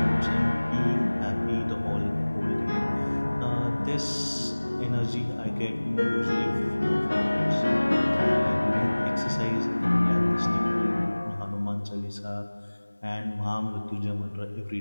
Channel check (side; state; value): both; inverted; correlation -1.00